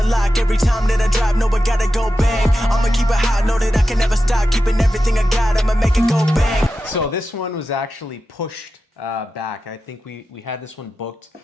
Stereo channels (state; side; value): normal; both; correlation 0.92